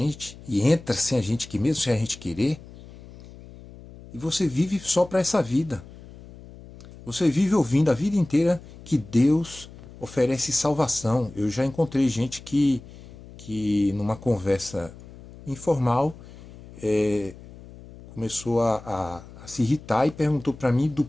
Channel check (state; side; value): noise; left; hum, 18 dB below the sound